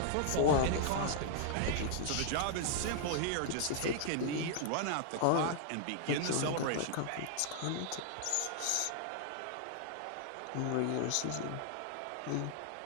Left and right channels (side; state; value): both; different; correlation -0.01